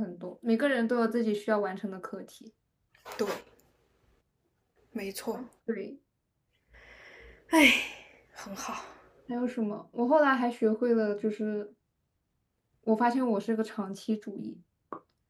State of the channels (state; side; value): identical; both; correlation 1.00